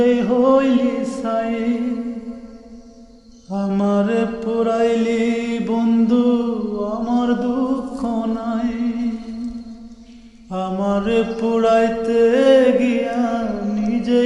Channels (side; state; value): both; identical; correlation 1.00